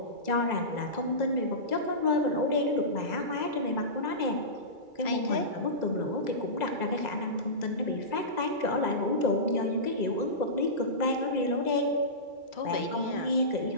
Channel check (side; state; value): left; late; 2.3 ms